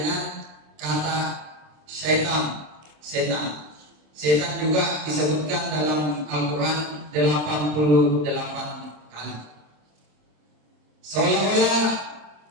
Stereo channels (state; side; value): late; left; 27 ms